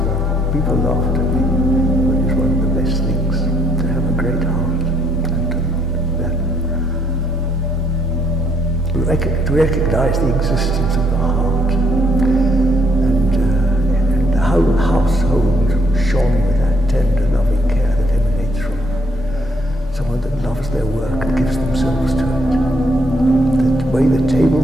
People laughed at me, but it's one of the best things to have a great heart. To recognize the existence of the heart, and the whole household shone with that tender, loving care that emanates from someone that loves their work and gives themselves to it. The way the table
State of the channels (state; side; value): normal; both; correlation 0.69